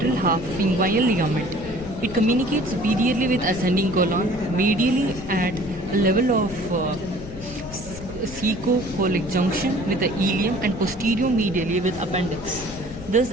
half of inguinal ligament. It communicates superiorly with ascending colon, medially at a level of caecocolic junction with the ileum, and posterior medially with appendix. This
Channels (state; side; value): noise; left; rumble, 13 dB below the sound